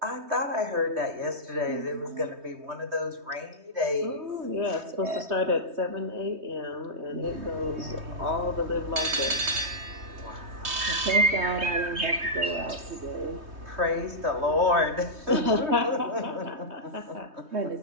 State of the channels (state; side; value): late; left; 3.2 ms